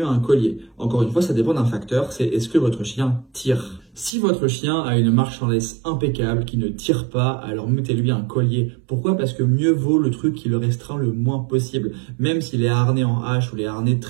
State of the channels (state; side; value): drops out; left; at 4.1 s